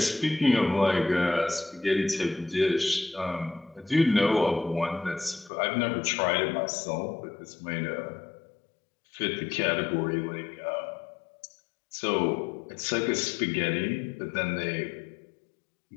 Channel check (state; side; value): drops out; right; at 5.5 s